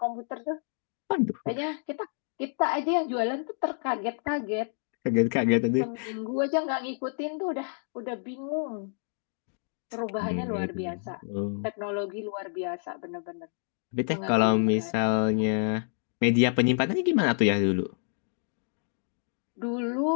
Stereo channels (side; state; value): right; silent; 59 dB below the other